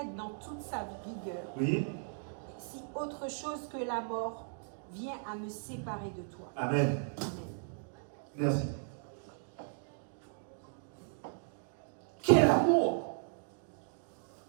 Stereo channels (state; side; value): silent; left; digital silence